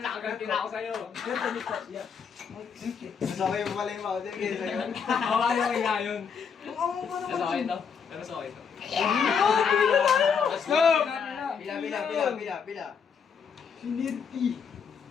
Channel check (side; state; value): right; quieter; 6.5 dB